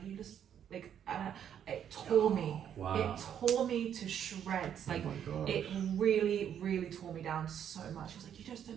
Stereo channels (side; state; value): left; quieter; 9.2 dB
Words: you just, like, it tore me. Wow. It tore me to shreds. Like, it really, really tore me down so much. He was like, you just don't